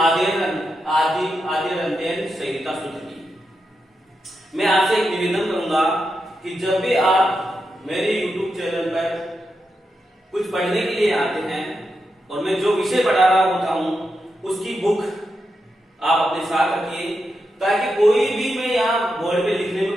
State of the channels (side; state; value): both; normal; correlation 0.86